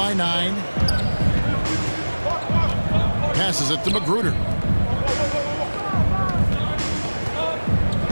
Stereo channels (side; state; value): both; inverted; correlation -1.00